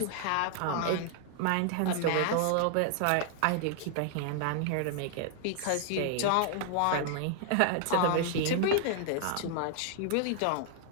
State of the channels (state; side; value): different; both; correlation 0.00